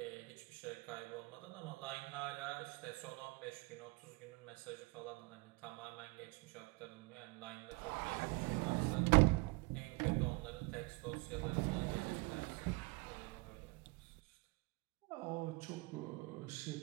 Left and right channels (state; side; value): quieter; left; 26.6 dB